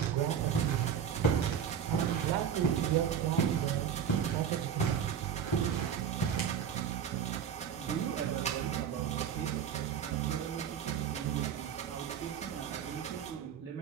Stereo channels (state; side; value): quieter; left; 8.1 dB